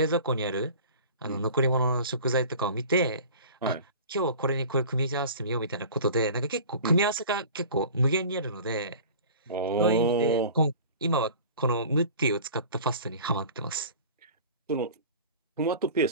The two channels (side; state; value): both; inverted; correlation -0.41